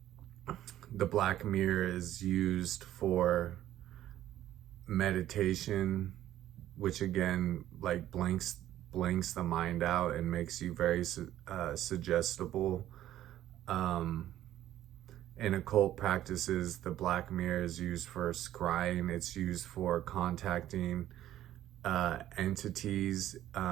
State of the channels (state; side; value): quieter; left; 12.9 dB